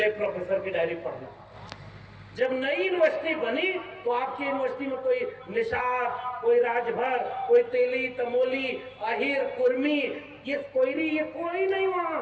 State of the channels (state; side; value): identical; both; correlation 1.00